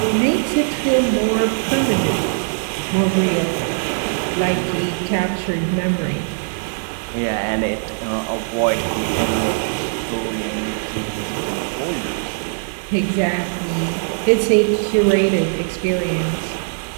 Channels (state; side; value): silent; left; digital silence